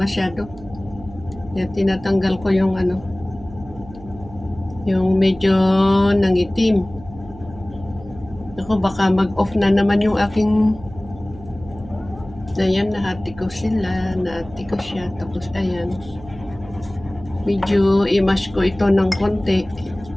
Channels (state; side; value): noise; right; hum, 18 dB below the sound